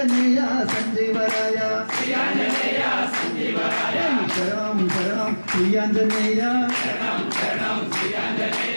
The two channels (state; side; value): inverted; both; correlation -1.00